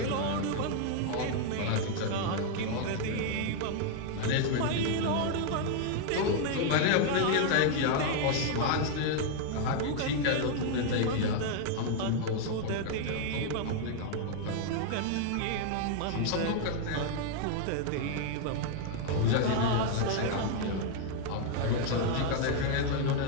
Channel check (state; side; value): different; both; correlation 0.00